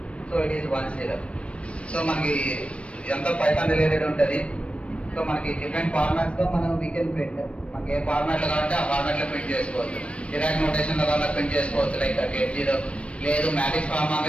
సో ఇట్ ఈస్ 1 సో మనకి ఎంత పైథాన్ రిలేటెడ్ ఉంటుంది. సో మనకి డిఫరెంట్ ఫార్మాట్స్ లో మనం వీ కెన్ ప్రింట్. మనకి ఏ ఫార్మాట్ లో కావాలంటే ఆ ఫార్మాట్ లో ప్రింట్ చేసుకోవచ్చు. డిరాక్ నోటేషన్ లో కావాలన్నా ప్రింట్ చేసుకోవచ్చు లైక్ గెట్ 0. లేదు మ్యాట్రిక్స్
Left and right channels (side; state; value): right; late; 0.061 ms